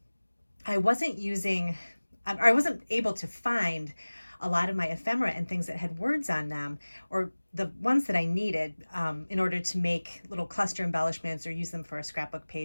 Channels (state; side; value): inverted; both; correlation -1.00